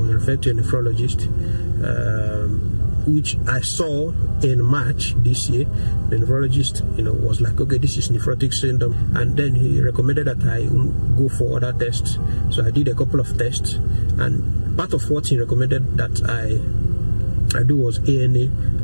referred to a nephrologist, which I saw in March this year. The nephrologist, was like, okay, this is nephrotic syndrome, and then he recommended that I go for other tests. So I did a couple of tests, and part of what he recommended that I do was ANA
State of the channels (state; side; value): inverted; both; correlation -1.00